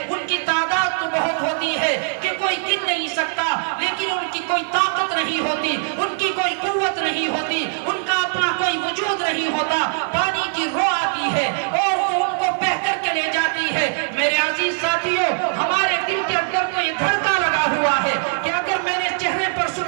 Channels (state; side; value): silent; left; 65 dB below the other